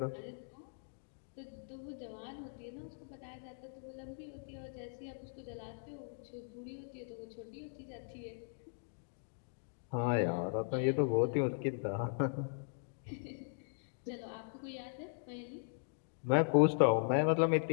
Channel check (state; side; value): silent; right; digital silence